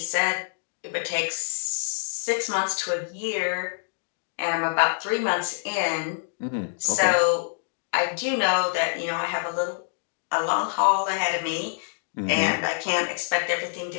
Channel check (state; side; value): silent; right; digital silence